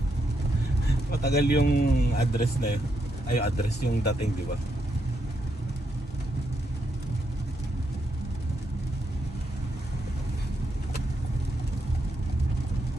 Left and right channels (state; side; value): normal; both; correlation 0.80